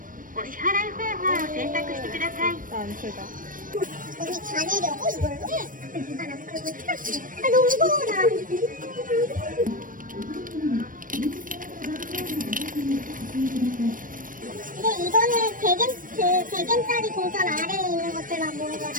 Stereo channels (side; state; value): left; late; 0.40 ms